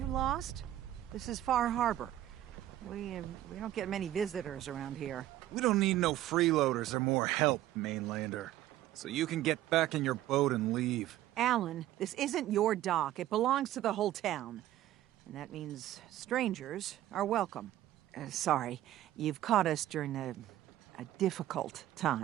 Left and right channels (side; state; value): left; quieter; 13.7 dB